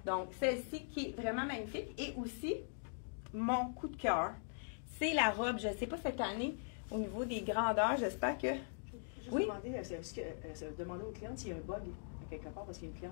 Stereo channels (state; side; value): silent; right; digital silence